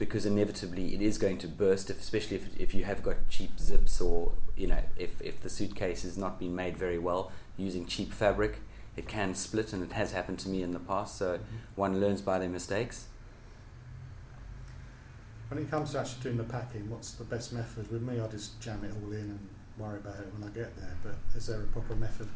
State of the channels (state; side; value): identical; both; correlation 1.00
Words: inevitably it is going to burst, especially if you have got cheap zips, or if the suitcase has not been made very well using cheap fabric, it can split, and it has happened to me in the past. So one learns by their mistakes. When it comes to actually doing the packing, what's the best method? With me, I just jam it all in and worry about it when I get there, but is there a proper method?